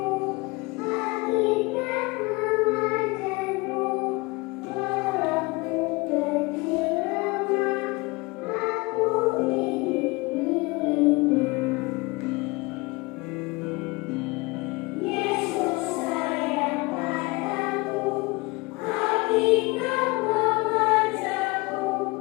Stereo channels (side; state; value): right; quieter; 25.2 dB